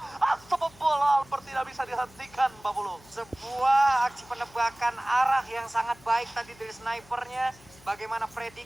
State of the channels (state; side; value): noise; left; hum, 24 dB below the sound